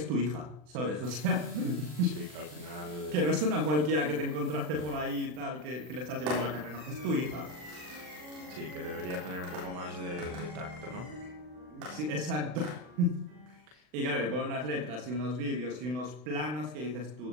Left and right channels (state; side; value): late; left; 40 ms